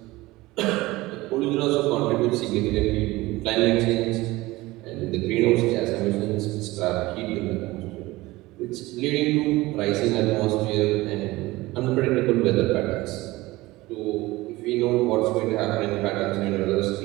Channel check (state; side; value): quieter; left; 19.6 dB